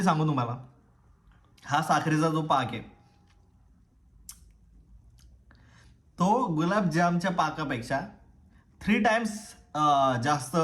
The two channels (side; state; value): both; identical; correlation 1.00